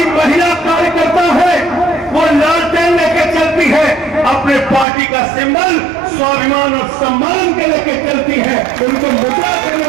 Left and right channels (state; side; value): drops out; left; at 4.9 s